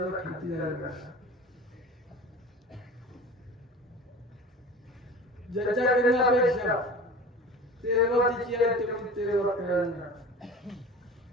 खाती जायला ज्याच्याकडे अपेक्षा तेरवातीची आहे तेवढी तेरवा करणार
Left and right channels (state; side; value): normal; both; correlation 0.37